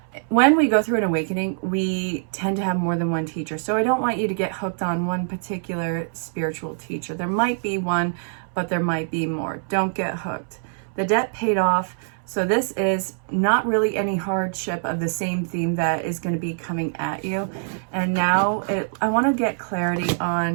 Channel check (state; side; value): silent; left; 63 dB below the other